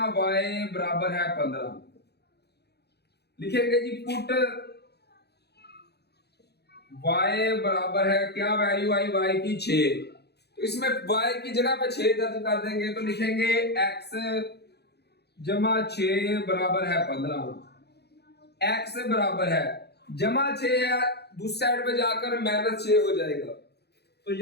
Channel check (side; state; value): right; late; 0.48 ms